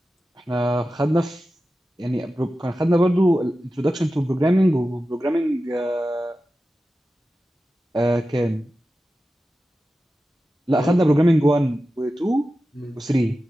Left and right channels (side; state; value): both; normal; correlation 0.93